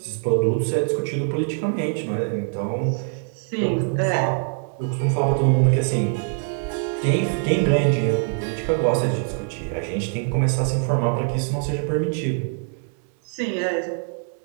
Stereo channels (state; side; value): silent; left; 57 dB below the other